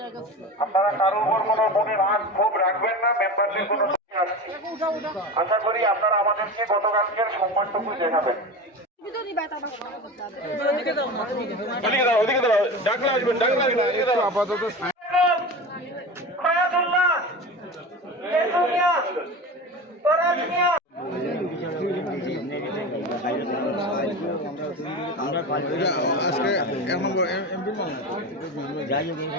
আপনারা কারোর উপর কোনো মনে রাগ ক্ষোভ রাখবেন না, মেম্বারদের কোনো আসছি। আশা করি আপনারা আমাদেরকে গতকালকের সম্মানটুকু দেখাবেন। আপাতত আজকে এমপি যাই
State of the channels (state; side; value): normal; both; correlation 0.28